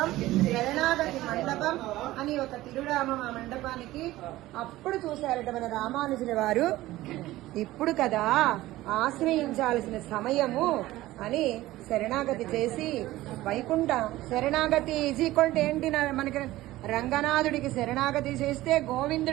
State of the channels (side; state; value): left; quieter; 16.7 dB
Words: శరణాగతి మండపం అని ఒక తిరునామం ఆ మండపానికి. అప్పుడు చూశారట మన రామానుజుల వారు, ఇప్పుడు కదా ఆశ్రయించాల్సిన సమయము అని శరణాగతి చేసి వైకుంఠ శరణాగతి ఈజీకొంటే ఏంటి, మనకి రంగనాథుడికి శరణాగతి చేస్తే,